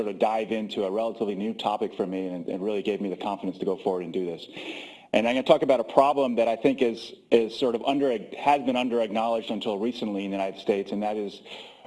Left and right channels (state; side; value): identical; both; correlation 1.00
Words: of dive into a relatively new topic for me and really gave me the confidence to go forward and do this. And I'm going to talk about a problem that I think has been under-acknowledged until recently in the United States, and that is